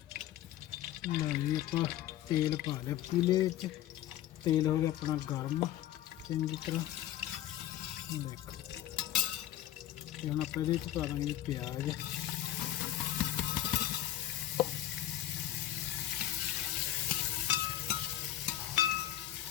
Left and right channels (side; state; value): right; quieter; 12.7 dB